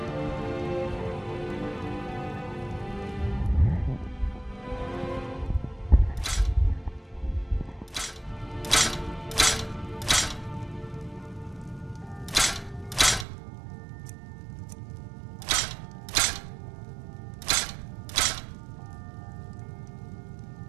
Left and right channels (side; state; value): left; drops out; at 13.2 s